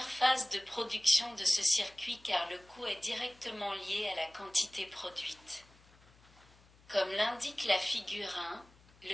phase de production de ce circuit, car le coût est directement lié à la quantité produite. Comme l'indique la figure 1,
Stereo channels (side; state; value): left; noise; hum, 27 dB below the sound